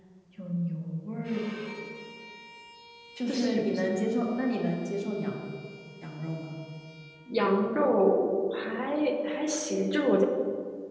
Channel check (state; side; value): identical; both; correlation 1.00